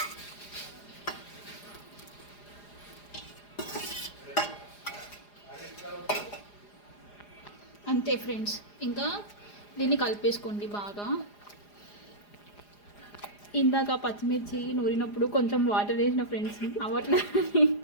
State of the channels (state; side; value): late; right; 4.9 ms